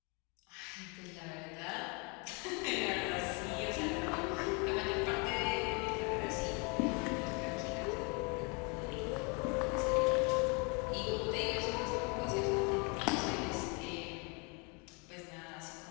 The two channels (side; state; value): right; quieter; 32.4 dB